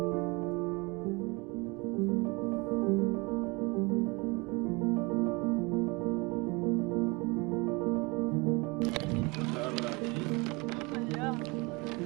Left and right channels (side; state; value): left; quieter; 27.0 dB